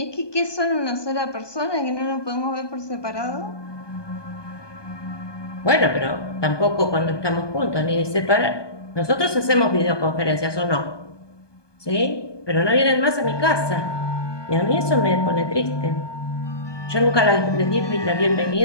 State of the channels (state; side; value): late; right; 1.2 ms